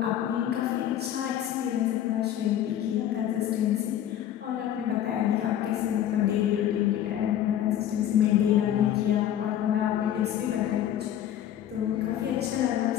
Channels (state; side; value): quieter; right; 11.1 dB